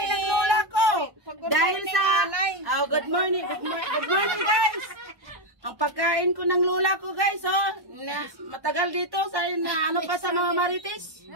ng lola ko. Dahil sa... Oh, good morning guys. Ang pagkain ko ng lola ko guys, oh. Matagal dito sa ano pa sa mga marites.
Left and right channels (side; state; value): left; late; 1.1 ms